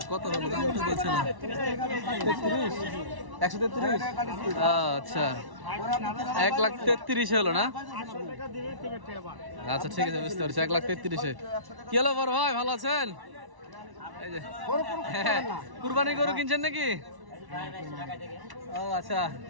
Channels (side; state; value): left; late; 1.1 ms